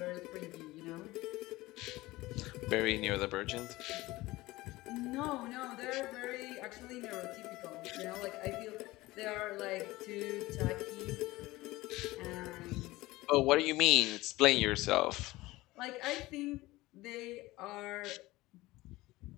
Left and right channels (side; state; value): right; quieter; 19.3 dB